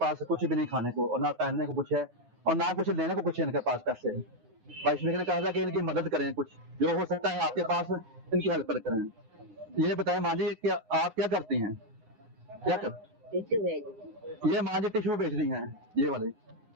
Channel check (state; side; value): late; left; 9.3 ms